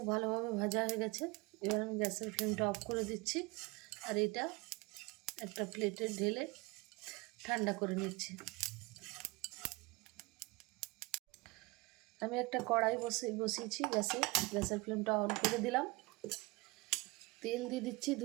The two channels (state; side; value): quieter; left; 24.7 dB